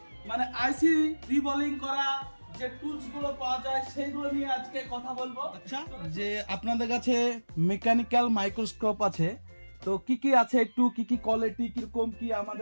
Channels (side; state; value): both; inverted; correlation -1.00